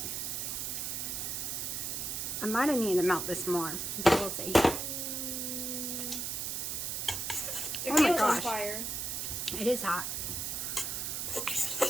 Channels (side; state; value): right; noise; hiss, 2 dB below the sound